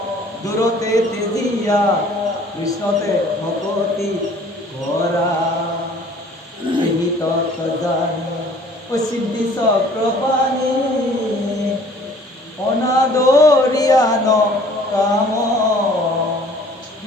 দূৰতে তেজিয়া কৃষ্ণতে ভকতি কৰা এই তত জানি ও সিদ্ধি চক্ৰপাণি অনাদৰিয়ান কাম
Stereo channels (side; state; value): both; normal; correlation 0.53